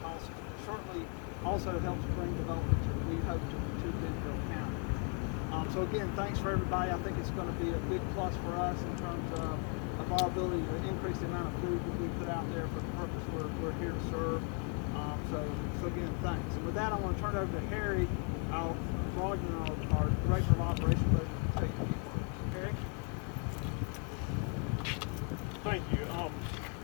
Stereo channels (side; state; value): right; quieter; 39.9 dB